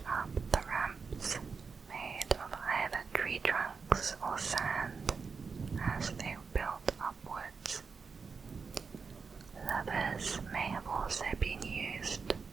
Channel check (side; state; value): left; quieter; 5.2 dB